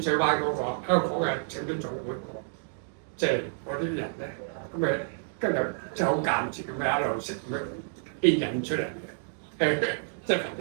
水灣嗰個香港嘅請兵總會即係嗰啲人咧，咁咪跟住即係好間接咁樣一路識咁樣牽引出嚟嘅，即係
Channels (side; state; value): left; silent; digital silence